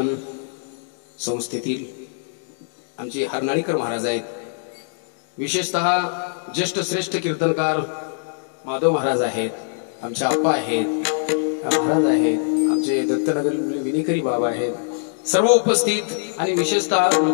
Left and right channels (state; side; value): silent; right; digital silence